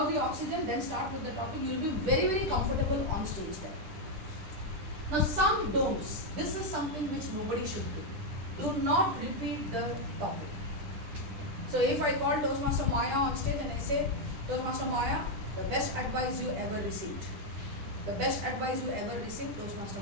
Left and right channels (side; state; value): left; late; 10 ms